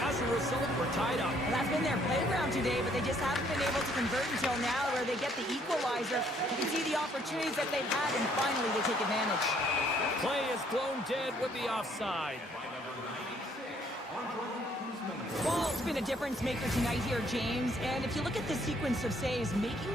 as a result, we're tied up. Well, that's been their playground today, but they just haven't been able to convert until now, where they get the equalizer. You can see the opportunities that they've had, and finally they take advantage. Play is blown dead with the offside. Well, it's been a difference maker tonight here, James. And if you look at the sequence of saves, making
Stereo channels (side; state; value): both; normal; correlation 0.65